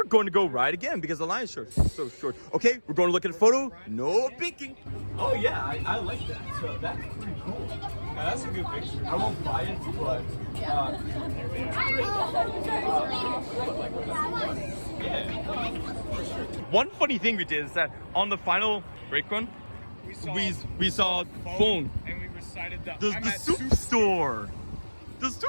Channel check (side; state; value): both; inverted; correlation -1.00